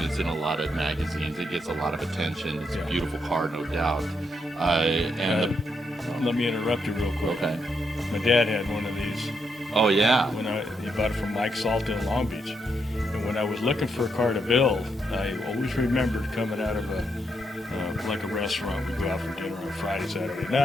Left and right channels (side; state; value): both; normal; correlation 0.79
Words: it's in a lot of magazines. It gets a lot of attention. It's a beautiful car, no doubt. Let me interrupt you real quick. Okay. My dad had one of these. Oh, yeah. He bought it from Mike Salton in Long Beach. And when I was looking for a car to build, I always remembered coming out of a restaurant. We'd go out for dinner on Friday, Saturday